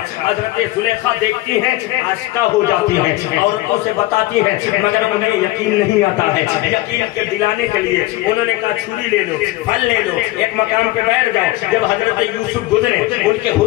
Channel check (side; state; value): right; quieter; 18.0 dB